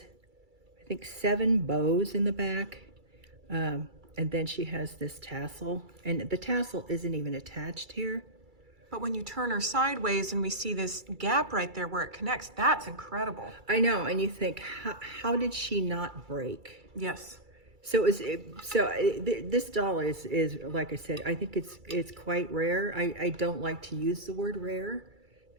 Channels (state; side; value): late; left; 2.3 ms